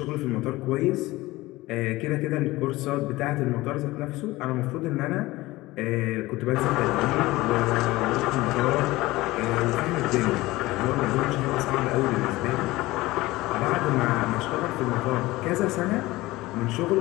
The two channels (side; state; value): right; quieter; 19.1 dB